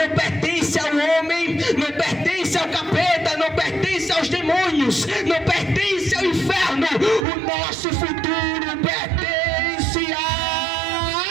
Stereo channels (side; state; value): left; drops out; at 7.2 s